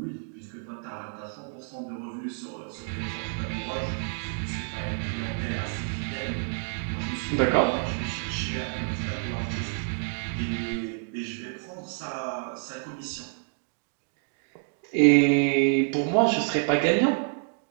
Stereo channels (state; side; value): silent; left; 59 dB below the other